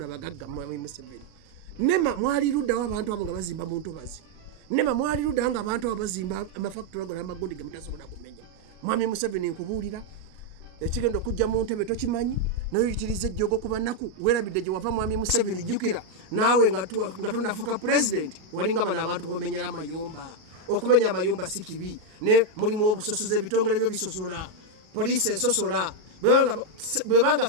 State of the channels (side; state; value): left; late; 38 ms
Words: Mwami Museveni nema mwali luddawo abantu abo nga bazimba mu ntobazi nema mwali luddawo nga abantu abo bazimba amafactory ago n'amagundi ge mutasobola kumenya Mwami Museveni nkubuulira ekigenda okujja mu ntebe tokimanyi noyitiriza ejjogo ku banaku weerabidde gye wava Mwami Museveni jjukira naawe nga tonnafuuka president walinga bano abantu bomenyera amayumba okumenya amayumba si kibi ne mulimu obusosoze ebitongole byo bisosola poliisi esosola bwebanga